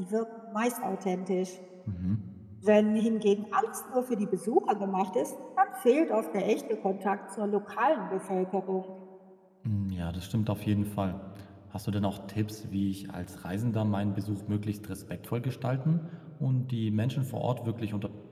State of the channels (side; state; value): both; identical; correlation 1.00